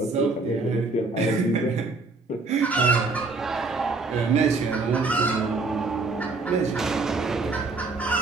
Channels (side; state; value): left; quieter; 3.7 dB